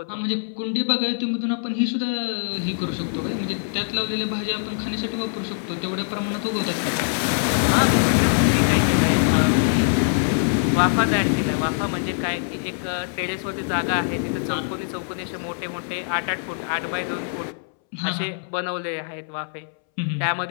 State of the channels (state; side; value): silent; right; 63 dB below the other